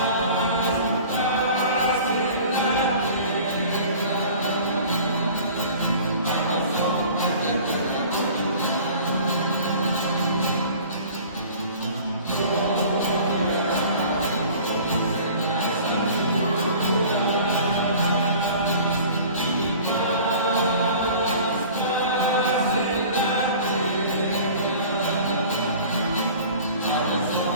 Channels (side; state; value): both; inverted; correlation -0.45